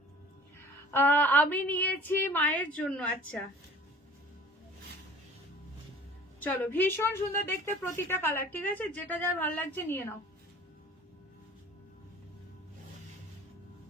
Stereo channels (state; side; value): normal; both; correlation 0.47